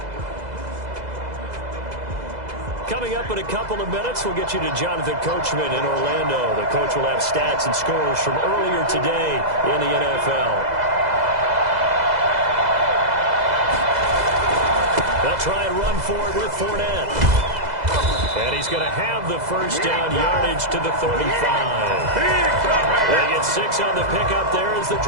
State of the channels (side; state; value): left; late; 2.0 ms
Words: Coming up in a couple of minutes, we'll get you to Jonathan Coachman in Orlando. The coach will have stats and scores from earlier today in the NFL. They'll try and run for it with Fournette. And he's going to have the first down yardage to the 35. They get 6 on the pickup there as the